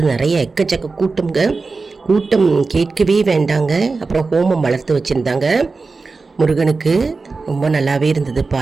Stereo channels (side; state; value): left; quieter; 4.1 dB